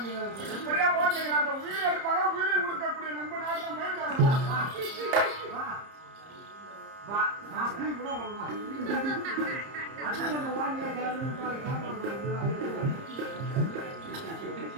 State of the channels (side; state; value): left; late; 30 ms